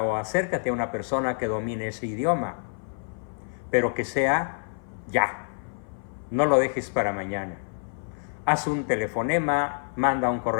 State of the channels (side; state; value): right; silent; 57 dB below the other